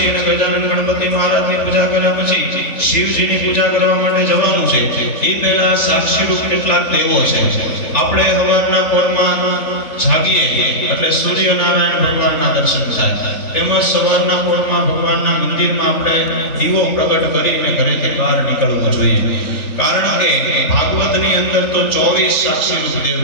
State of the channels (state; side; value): late; right; 3.5 ms